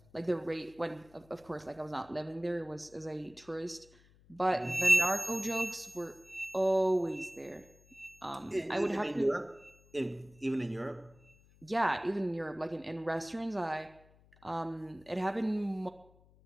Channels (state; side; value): noise; left; hum, 28 dB below the sound